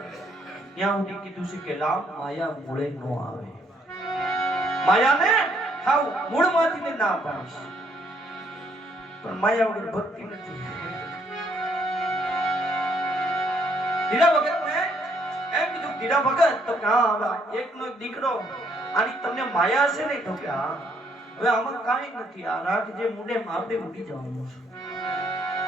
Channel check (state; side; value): normal; both; correlation 0.69